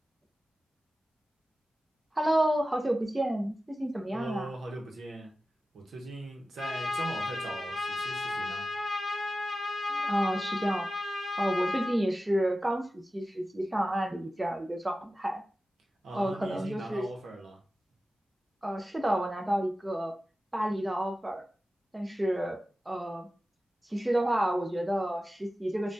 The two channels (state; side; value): normal; both; correlation 0.94